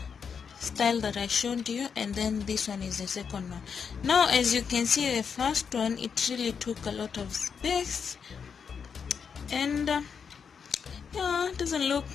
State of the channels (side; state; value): right; quieter; 6.4 dB